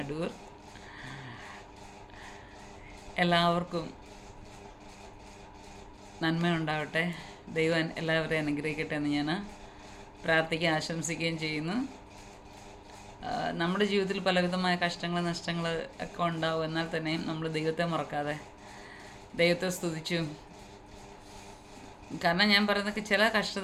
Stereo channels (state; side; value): identical; both; correlation 1.00